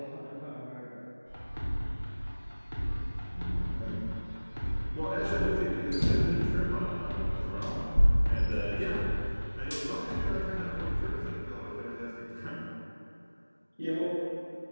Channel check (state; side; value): inverted; both; correlation -1.00